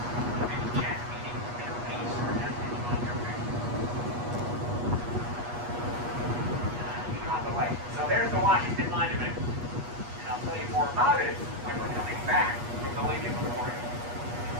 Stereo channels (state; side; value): late; left; 8.3 ms